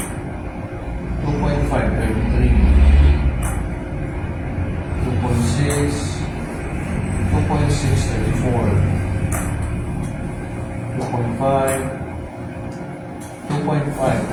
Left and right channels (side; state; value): both; identical; correlation 1.00